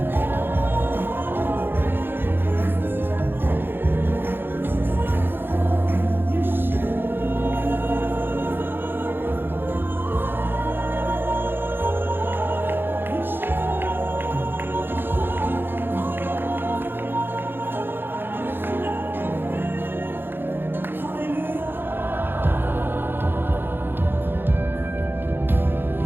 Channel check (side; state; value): left; late; 0.10 ms